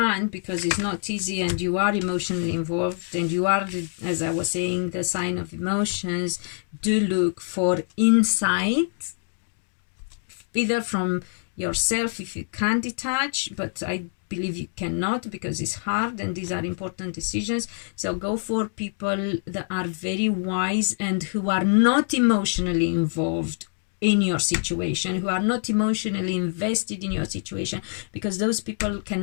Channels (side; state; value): right; silent; 61 dB below the other